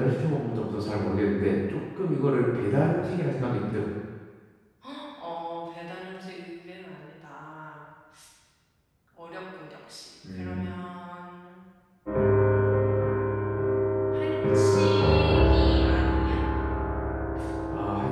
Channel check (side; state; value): both; identical; correlation 1.00